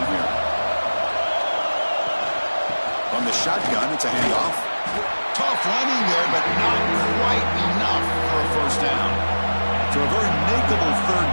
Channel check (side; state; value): both; inverted; correlation -1.00